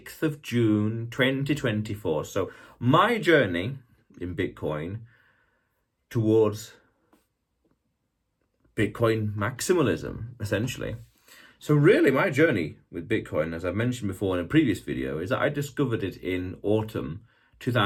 of June, 2024. So my journey in Bitcoin towards Bitcoin maximalism, essentially. So really my journey with Bitcoin, as I mentioned before in a previous video, is that I discovered it in autumn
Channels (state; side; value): identical; both; correlation 1.00